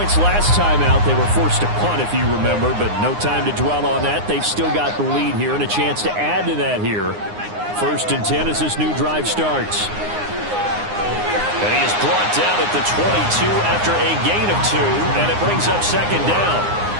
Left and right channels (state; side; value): late; left; 9.7 ms